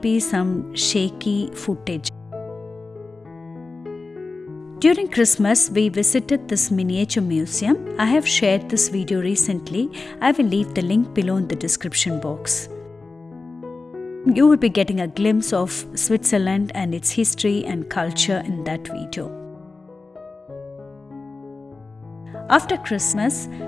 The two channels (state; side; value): quieter; right; 3.7 dB